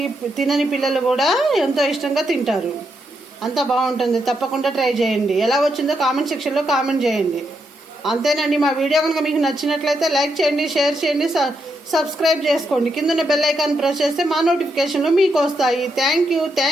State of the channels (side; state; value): both; normal; correlation 0.81